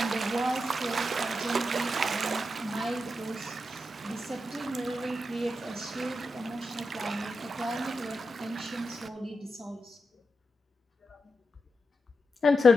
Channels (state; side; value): normal; both; correlation 0.87